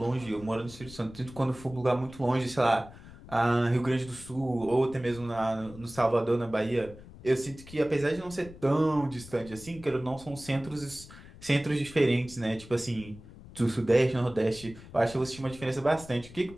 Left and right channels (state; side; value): noise; left; rumble, 18 dB below the sound